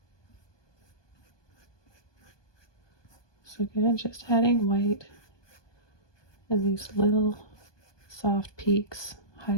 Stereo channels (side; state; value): right; late; 1.2 ms